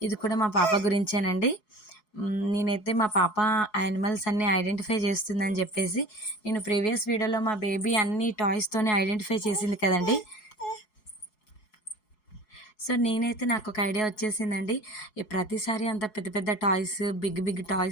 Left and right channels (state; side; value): late; right; 4.7 ms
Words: ఇది కూడా మా పాప గురించేనండి. నేనైతే మా పాప యానిమల్స్ అన్నీ ఐడెంటిఫై చేస్తుందని చెప్పేసి నేను ప్రీవియస్ వీడియోలో మా బేబీ అన్ని టాయ్స్తోనే ఐడెంటిఫై చేసింది కదండి. సో నేనైతే నాకు ఒక ఐడియా వచ్చేసిందండి. ఈ ప్రతిసారి అంత పెద్ద పెద్ద టాయ్స్ బిగ్